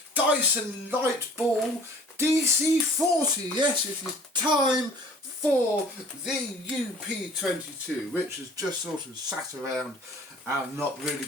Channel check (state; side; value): normal; both; correlation 0.50